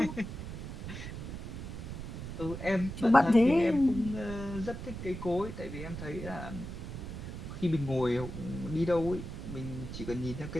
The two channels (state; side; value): noise; right; rumble, 8 dB below the sound